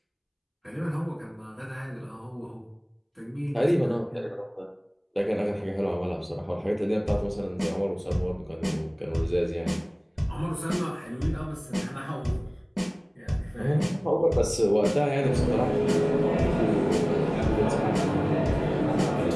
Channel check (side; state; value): both; identical; correlation 1.00